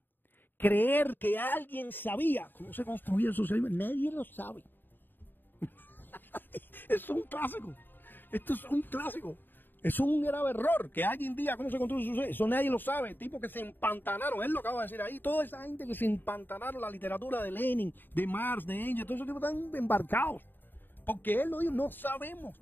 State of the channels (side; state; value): right; late; 0.093 ms